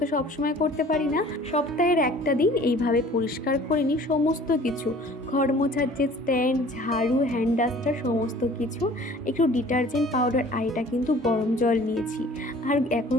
তো সবসময় করতে পারি না, সপ্তাহের একটা দিন এইভাবে পরিষ্কার করে নিই সমস্ত কিছু, ঘর মোছার যে স্ট্যান্ড, ঝাড়ু, হ্যান্ড ডাস্টার সমস্ত কিছু। একটু ডিটারজেন্ট পাউডার, আর এটা কিন্তু গরম জল নিয়েছি। আর এখন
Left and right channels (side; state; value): both; normal; correlation 0.49